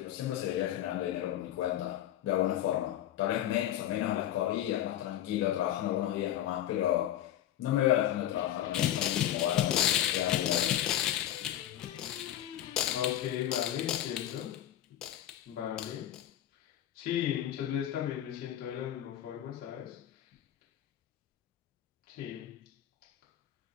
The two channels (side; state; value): right; quieter; 12.0 dB